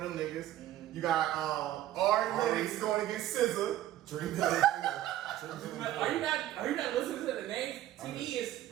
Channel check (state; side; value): quieter; left; 13.4 dB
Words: them niggas. You got Ari Lennox going against SZA. Dreamville. Are you not listening to the names? TD is